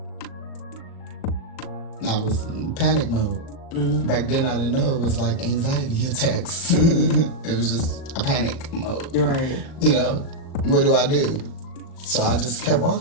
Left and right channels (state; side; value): late; right; 38 ms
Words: I was in panic mode. Back then, I didn't know it was like anxiety attacks. It was just a panic mode. Right. You know, what do I do? So I just kept